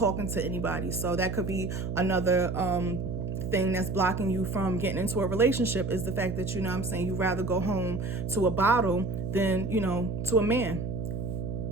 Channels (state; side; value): noise; right; hum, 4 dB below the sound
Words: to anybody. So that could be another thing that's blocking you from getting into a relationship, is the fact that, you rather go home to a bottle than, to a man.